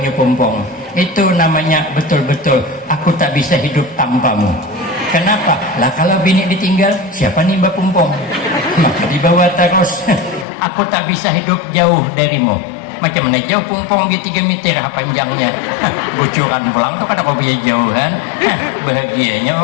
pumpong. Itu namanya betul-betul aku tak bisa hidup tanpamu. Kenapa? Lah kalau bini ditinggal, siapa nimba pumpong? Maka dibawa terus. Aku tak bisa hidup jauh darimu. Macam mana jauh pumpong di 3 meter panjangnya. Bocoran pulang tuh kada kau bisa jauhan. Bahagianya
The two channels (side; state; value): right; drops out; at 10.5 s